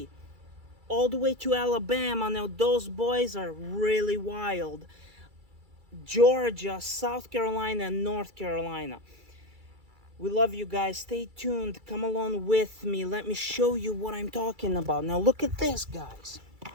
all the way to Alabama. Now those boys are really wild. Georgia, South Carolina, and North Carolina. We love you guys. Stay tuned. Come along with me. Let me show you what I'm talking about. Now look at this, guys.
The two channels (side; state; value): left; late; 2.3 ms